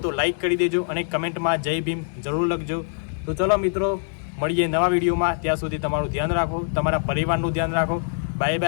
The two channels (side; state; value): right; silent; digital silence